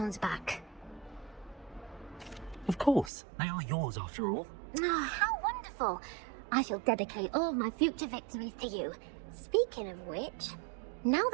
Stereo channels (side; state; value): left; drops out; at 3.1 s